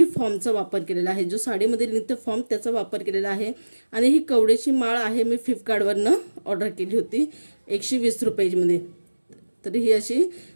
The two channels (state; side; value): inverted; both; correlation -1.00